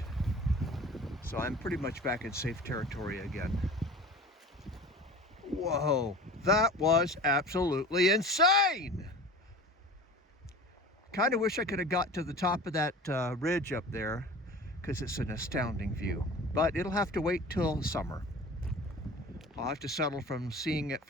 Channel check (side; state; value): both; normal; correlation 0.39